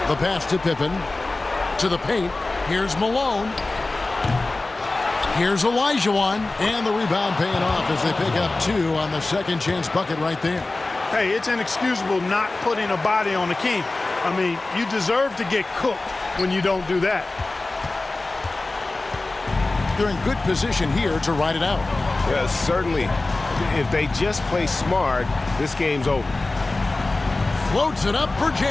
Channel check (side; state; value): right; quieter; 3.2 dB